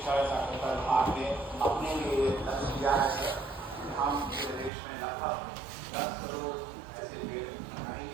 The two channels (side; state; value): left; drops out; at 4.7 s